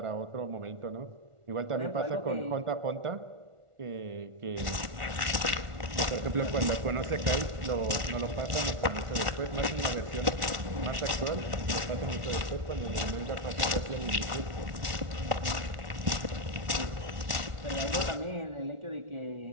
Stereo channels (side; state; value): left; late; 1.4 ms